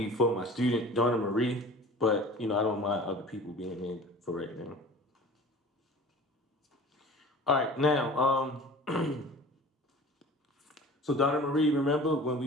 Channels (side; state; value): both; normal; correlation 0.41